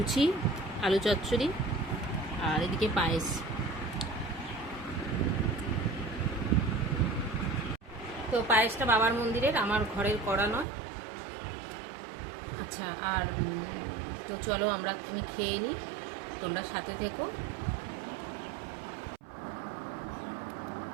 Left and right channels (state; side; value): drops out; left; at 10.7 s